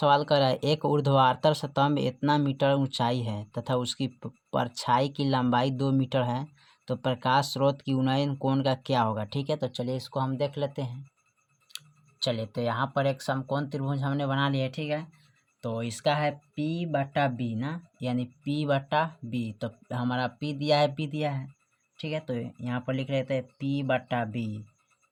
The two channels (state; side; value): identical; both; correlation 1.00